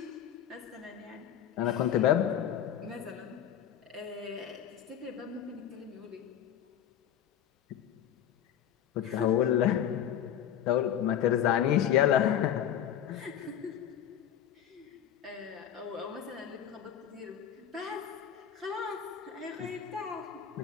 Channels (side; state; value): right; quieter; 9.8 dB